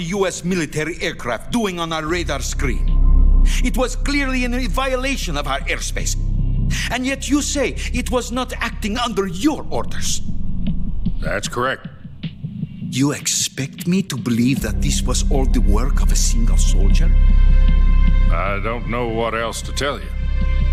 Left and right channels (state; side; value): identical; both; correlation 1.00